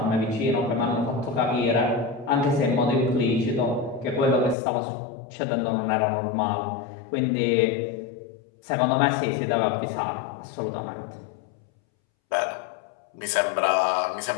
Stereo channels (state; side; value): drops out; right; at 4.5 s